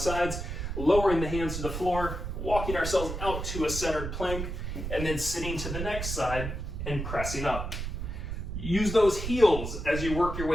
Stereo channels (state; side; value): noise; right; rumble, 5 dB below the sound